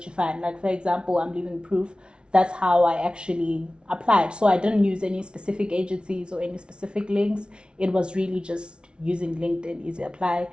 you find. Like, for example, I'm living proof. That's how I actually applied. So I didn't use any specific agencies or any specific links. It was really just using LinkedIn Easy Apply.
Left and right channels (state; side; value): late; left; 0.057 ms